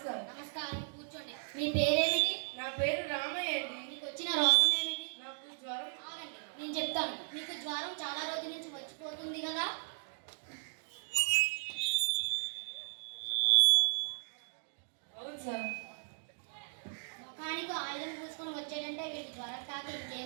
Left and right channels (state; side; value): silent; left; digital silence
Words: నమస్కారం, కూర్చోండి. మీ పేరేమిటి? నా పేరు రామయ్య అండి. మీకు వచ్చిన రోగం ఏమిటి? నాకు జ్వరం. ఆగండి, నేను చెప్తాను. మీకు జ్వరం చాలా రోజుల నుంచి వచ్చిపోతుంది కదా. అవును సార్. ముఖానికి ఆయుధం పూసుకొని వచ్చాడంటే వీటి జ్వరం కాక